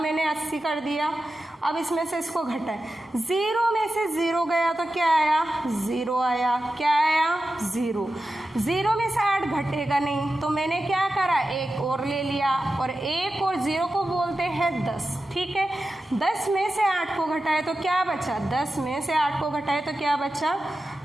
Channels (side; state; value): both; normal; correlation 0.92